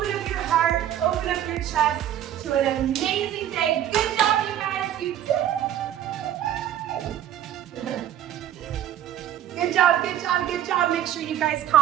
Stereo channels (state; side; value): quieter; left; 11.3 dB